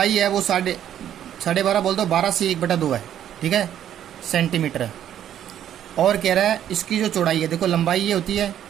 है वो 12.5 बोल दो, 12 से 1/2 है। ठीक है, सेंटीमीटर है। और कह रहा है इसकी जो चौड़ाई है, देखो लंबाई ये होती है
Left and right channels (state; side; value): quieter; left; 10.6 dB